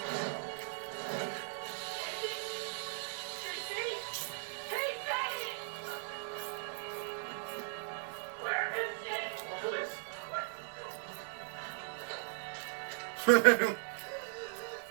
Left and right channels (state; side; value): silent; left; digital silence